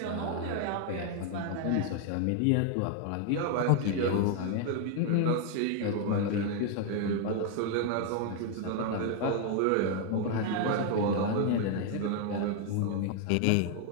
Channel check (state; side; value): different; both; correlation 0.00